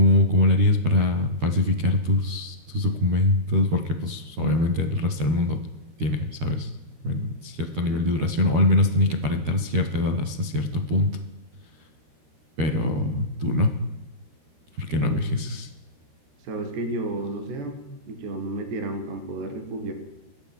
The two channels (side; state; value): left; late; 13 ms